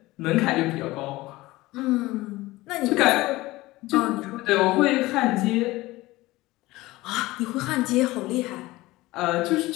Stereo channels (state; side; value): quieter; right; 19.2 dB